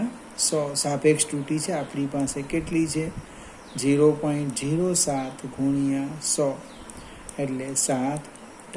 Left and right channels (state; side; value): identical; both; correlation 1.00